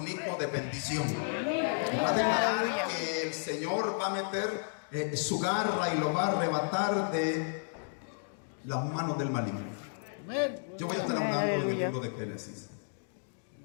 hijo de bendición. Va a declarar que el Señor va a meter su garra y lo va a arrebatar de las manos del maligno. Yo voy a estar hablando del libro de Génesis.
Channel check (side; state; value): right; silent; digital silence